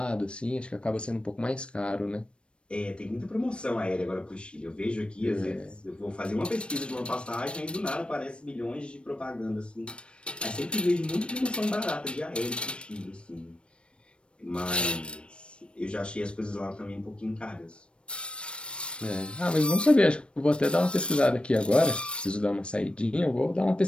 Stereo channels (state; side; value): late; right; 0.058 ms